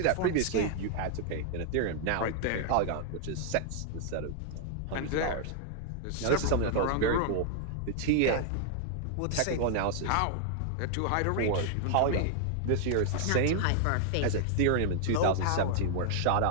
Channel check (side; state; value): both; different; correlation 0.00